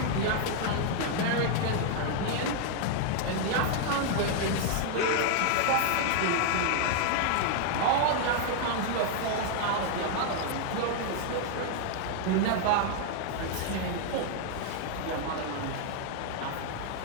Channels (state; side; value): different; both; correlation 0.00